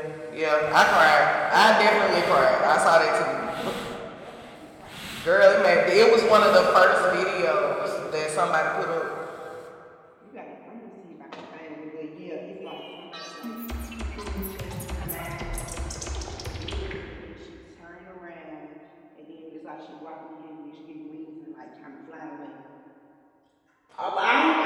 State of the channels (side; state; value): both; identical; correlation 1.00